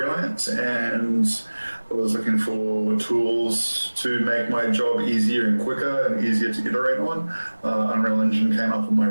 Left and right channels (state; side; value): inverted; both; correlation -1.00